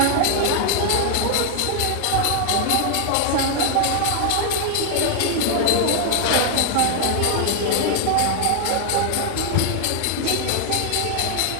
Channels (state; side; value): different; both; correlation 0.00